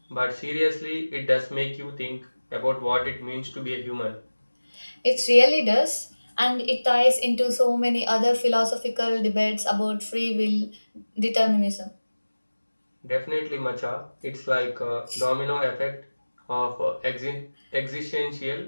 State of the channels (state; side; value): inverted; both; correlation -1.00